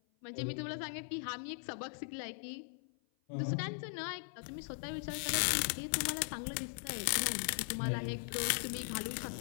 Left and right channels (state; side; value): silent; right; 52 dB below the other